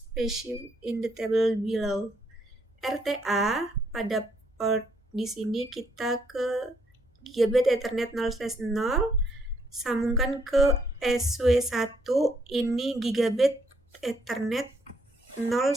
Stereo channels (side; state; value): both; normal; correlation 0.71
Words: specified in the table below. RTA pada port di sini kita ke Gigabit Ethernet 0/0, sambungkan ke SW1, ini Gigabit Ethernet